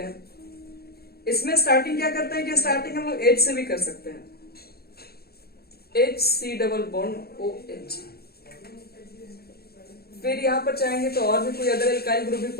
हैं। इसमें स्टार्टिंग क्या करते हैं कि स्टार्टिंग हम लोग H से भी कर सकते हैं, HC डबल बॉन्ड OH। फिर यहां पर चाहेंगे तो और भी कोई अदर एल्काइल ग्रुप भी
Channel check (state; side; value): late; right; 0.46 ms